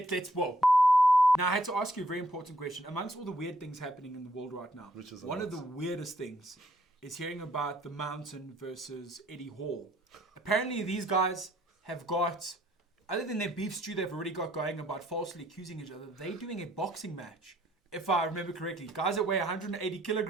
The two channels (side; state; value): both; normal; correlation 0.68